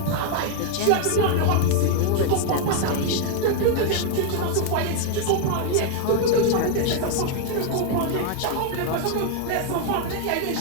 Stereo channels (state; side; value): different; both; correlation 0.00